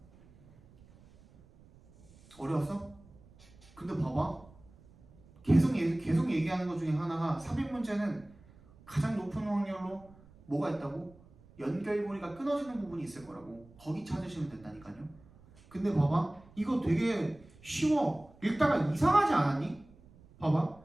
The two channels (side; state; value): right; noise; rumble, 25 dB below the sound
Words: 어려웠어? 근데 봐봐. 계속 얘기하는 것 중에 하나가 삽입 문제는 가장 높은 확률로 뭐가 있다고? 연결고리가 끊어지는 부분이 있을 거라고. 거기 찾으시면 된다니까요. 근데 봐봐, 이거 되게 쉬워. 읽다가 이상하지 않았니? 봐봐,